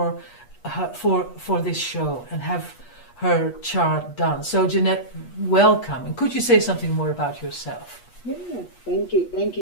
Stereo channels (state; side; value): late; right; 8.3 ms